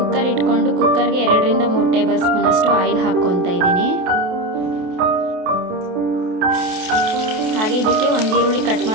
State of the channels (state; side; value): late; left; 28 ms